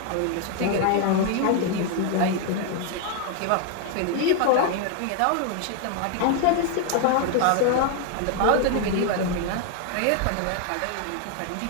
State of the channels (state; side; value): different; both; correlation 0.00